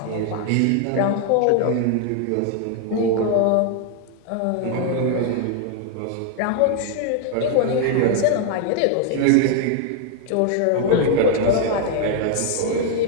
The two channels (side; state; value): both; different; correlation 0.00